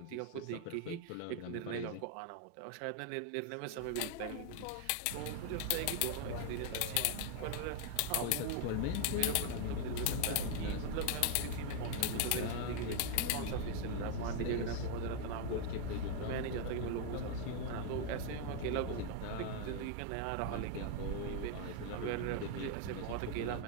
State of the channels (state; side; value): different; both; correlation 0.00